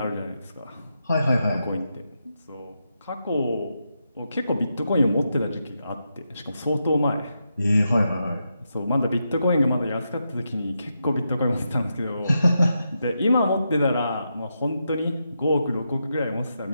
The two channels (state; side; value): inverted; both; correlation -0.85